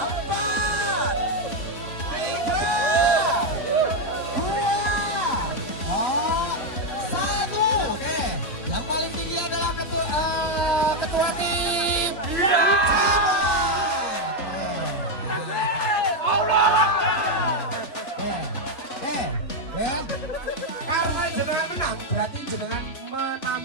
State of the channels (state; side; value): late; right; 3.6 ms